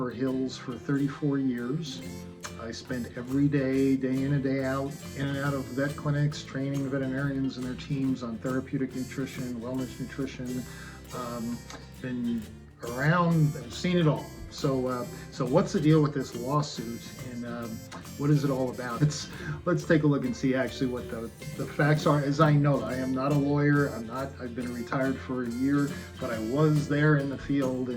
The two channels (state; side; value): identical; both; correlation 1.00